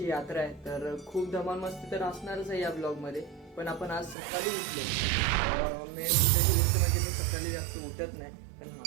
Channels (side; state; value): left; drops out; at 4.2 s